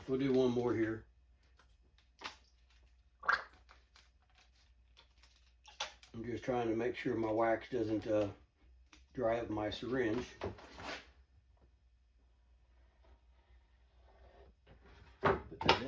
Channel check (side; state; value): both; identical; correlation 1.00